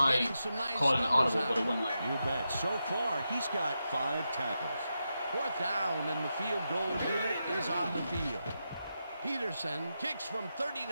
getting some nice an numbers audible, out. but it wouldn't let me. You bet. So far, he's got 5 tackles. Fourth down, and the field goal unit is on the field. Peterson kicks from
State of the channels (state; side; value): inverted; both; correlation -0.87